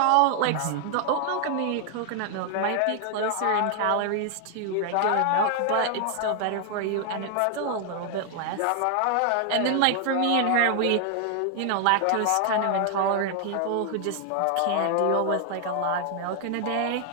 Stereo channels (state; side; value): different; both; correlation 0.00